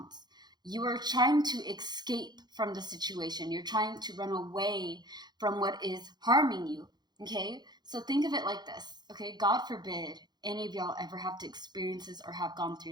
you are trying to escape from the situation. You're trying to run away from what is harming you, okay? So think of it like this, okay? God forbid any of y'all ever have to experience this or have gone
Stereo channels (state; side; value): late; left; 0.20 ms